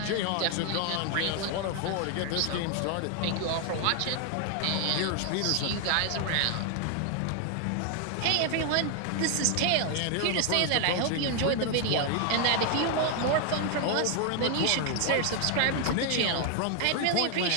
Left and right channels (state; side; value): different; both; correlation 0.00